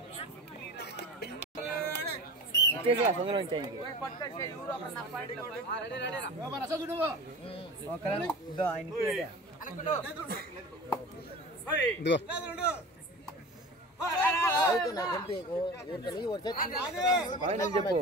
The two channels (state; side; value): normal; both; correlation 0.35